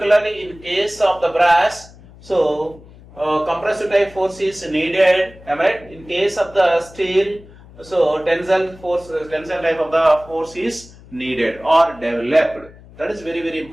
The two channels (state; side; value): noise; left; hum, 22 dB below the sound